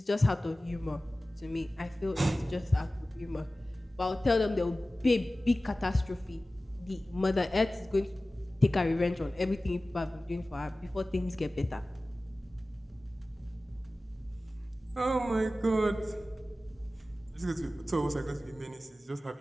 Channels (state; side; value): normal; both; correlation 0.96